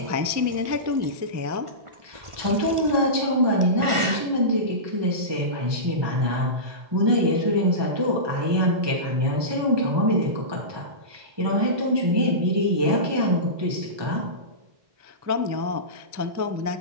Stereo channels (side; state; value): left; late; 1.4 ms